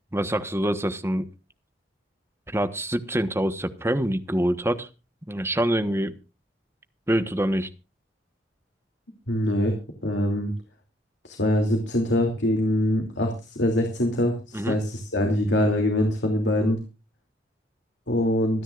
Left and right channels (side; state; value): both; normal; correlation 0.69